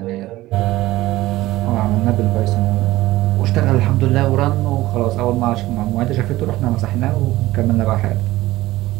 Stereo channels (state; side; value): quieter; left; 17.2 dB